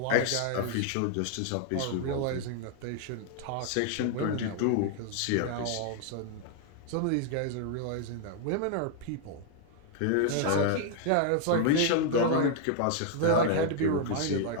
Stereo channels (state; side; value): different; both; correlation 0.00